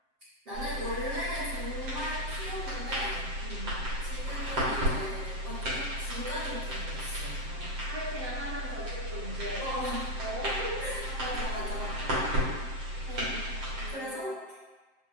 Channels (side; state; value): left; late; 7.6 ms